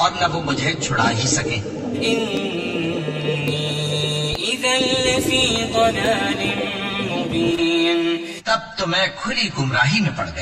اور نہ وہ مجھے چھڑا ہی سکے. إني إذا لفي ضلال مبين. تب تو میں کھلی گمراہی میں پڑ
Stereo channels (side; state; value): both; identical; correlation 1.00